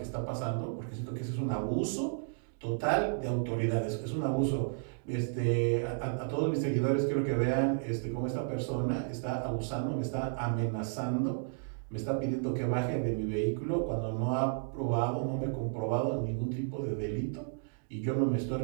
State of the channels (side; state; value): left; silent; digital silence